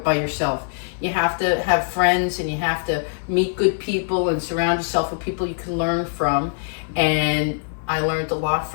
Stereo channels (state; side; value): silent; right; digital silence